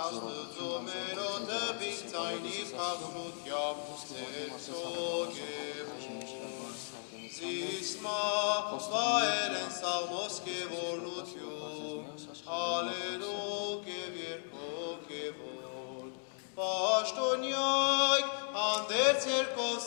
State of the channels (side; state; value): right; silent; digital silence